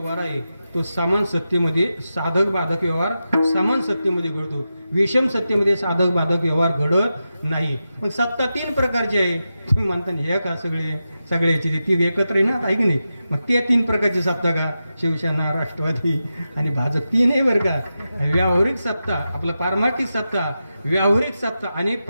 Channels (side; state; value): both; inverted; correlation -0.90